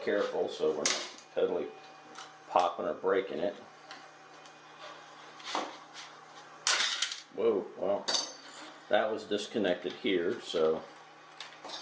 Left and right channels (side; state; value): both; identical; correlation 1.00